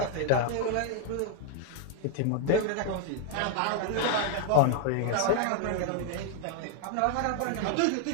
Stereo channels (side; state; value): both; different; correlation 0.00